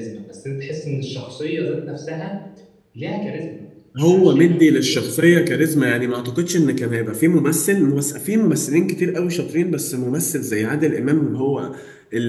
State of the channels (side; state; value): both; identical; correlation 1.00